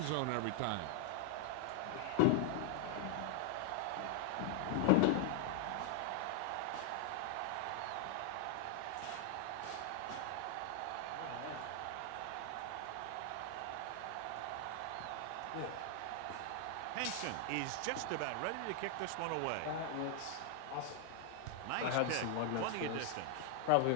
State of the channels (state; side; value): different; both; correlation 0.00